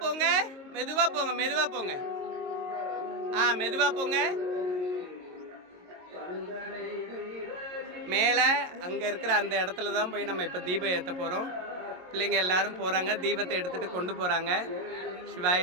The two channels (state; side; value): late; left; 22 ms